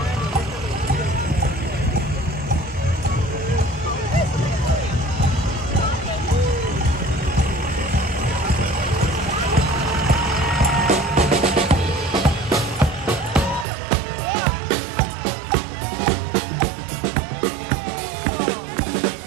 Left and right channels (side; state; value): left; drops out; at 13.7 s